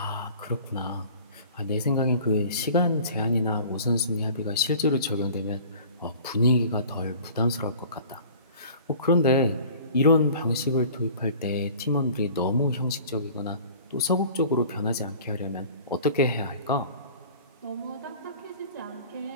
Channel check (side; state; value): both; inverted; correlation -0.45